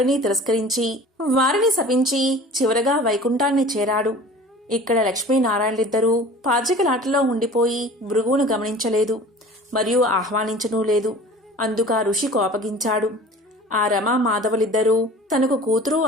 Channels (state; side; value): normal; both; correlation 0.43